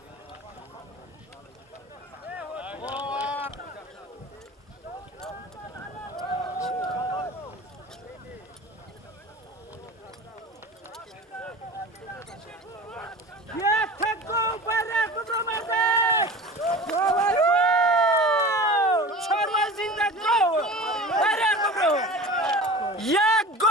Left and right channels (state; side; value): normal; both; correlation 0.36